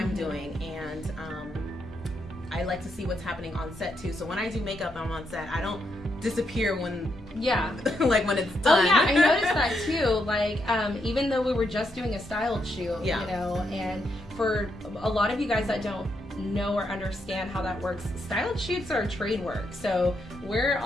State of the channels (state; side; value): normal; both; correlation 0.80